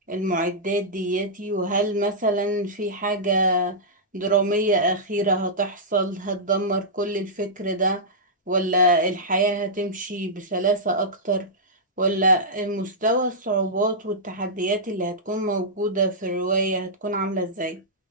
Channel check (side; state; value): both; normal; correlation -0.12